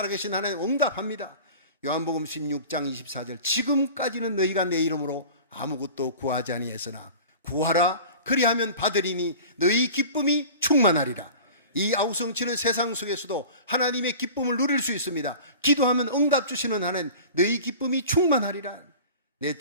하나님 응답합니다. 요한복음 16장 24절 지금까지는 너희가 내 이름으로 아무것도 구하지 아니했으나 구하라 그리하면 받으리니 너희 기쁨이 충만하리라. 이 아우성치는 세상 속에서도 하나님의 기쁨을 누릴 수 있습니다. 기도하면 응답 주시는 하나님, 너희 기쁨이 충만하리라.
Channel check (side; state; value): both; inverted; correlation -0.39